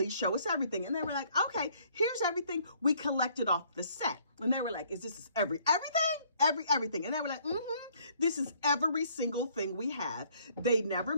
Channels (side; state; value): both; inverted; correlation -0.63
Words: show us everything. And they were like, okay, here's everything we collected off the set. And they were like, is this everything? And they were like, this is every single thing we have. They never